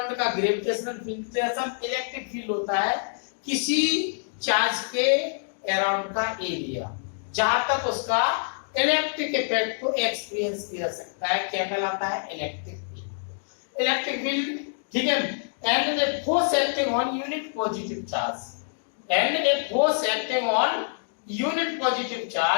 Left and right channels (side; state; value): right; silent; digital silence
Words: का ग्रेविटेशनल फील्ड, तो ऐसा इलेक्ट्रिक फील्ड होता है किसी चार्ज के अराउंड का एरिया जहां तक उसका इलेक्ट्रिक इफेक्ट को एक्सपीरियंस किया सकता है, क्या कहलाता है? Electric field. इलेक्ट्रिक फील्ड, ठीक है, and a force acting on unit positive charge and a force acting on unit positive